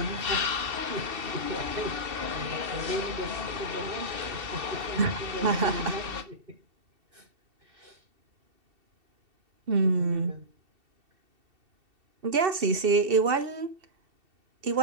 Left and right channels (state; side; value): late; left; 2.7 ms